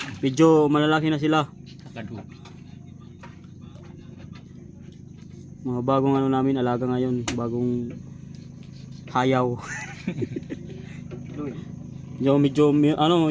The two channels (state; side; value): identical; both; correlation 1.00